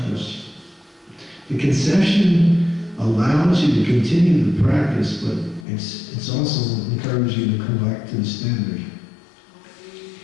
The concession allows you to continue the practice, but it's also encourages you to come back to the standard.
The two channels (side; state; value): right; drops out; at 5.7 s